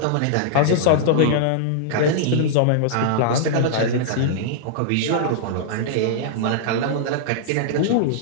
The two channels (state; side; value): different; both; correlation -0.02